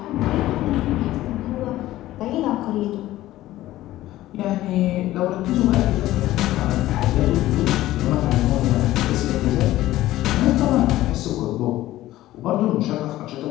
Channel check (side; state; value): right; quieter; 15.4 dB